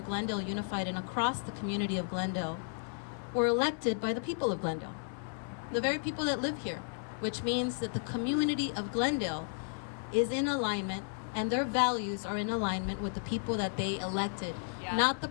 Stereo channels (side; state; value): right; silent; digital silence